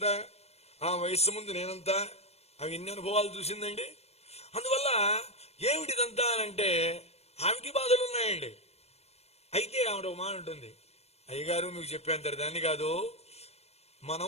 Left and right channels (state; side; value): late; right; 0.31 ms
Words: ఆ వయస్సు ముందు నేనంతా, ఆమె ఎన్ని అనుభవాలు చూసిందండి. అందువల్ల ఏమిటిదంతా అంటే ఆమెకి బాధలు ఉన్నాయండి. అయితే ఆవిడ ఒక మాట ఉంటుంది, అయ్యగారు మీకు చెప్పేంత దాన్ని కాదు,